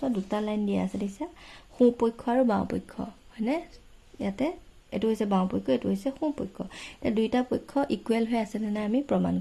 দুটা লাইন দিয়া আছে, দিছে সোঁপক্ষ আৰু বাওঁপক্ষ, হয়নে? ইয়াতে এটো হৈছে বাওঁপক্ষ, এটো হৈছে সোঁপক্ষ। এটা দুইটা পক্ষ ইকুৱেল হৈ আছে নে আমি প্ৰমাণ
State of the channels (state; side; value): identical; both; correlation 1.00